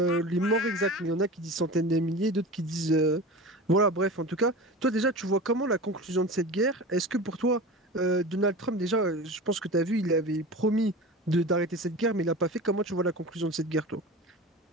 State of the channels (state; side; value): normal; both; correlation 0.32